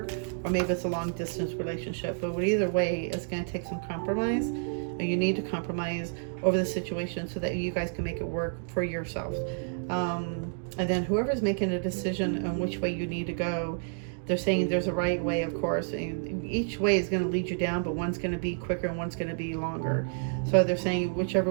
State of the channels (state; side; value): silent; left; digital silence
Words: Or maybe it's a long distance relationship. But either way, it's going to take some compromise. You need to compromise over the situation so that you guys can make it work for yourself. And then whoever's making a decision on which way you need to go, they're saying there's a right way, of course. And each way is going to lead you down, but one's going to be quicker and one's going to be longer. So they're saying